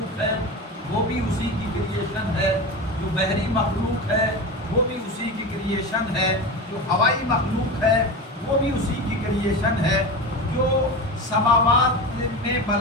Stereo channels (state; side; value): normal; both; correlation 0.25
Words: ہے وہ بھی اسی کی کریشن ہے، جو بحری مخلوق ہے وہ بھی اسی کی کریشن ہے، جو ہوائی مخلوق ہے وہ بھی اسی کی کریشن ہے، جو سماوات میں